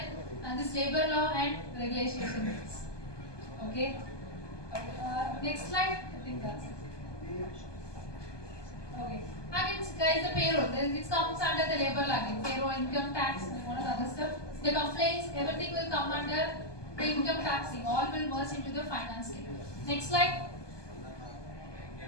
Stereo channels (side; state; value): right; late; 1.2 ms